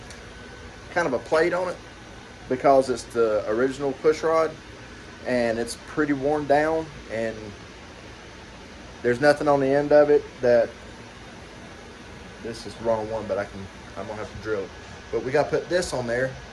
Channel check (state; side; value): identical; both; correlation 1.00